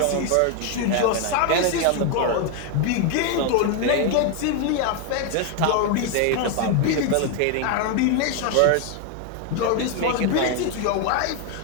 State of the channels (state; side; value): different; both; correlation 0.01